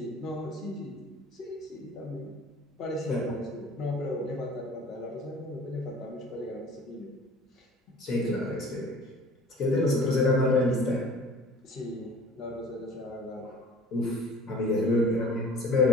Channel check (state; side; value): normal; both; correlation 0.46